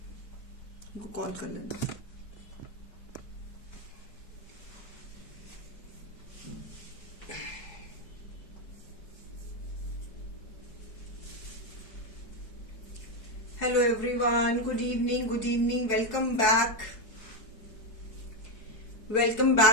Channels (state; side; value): late; right; 4.7 ms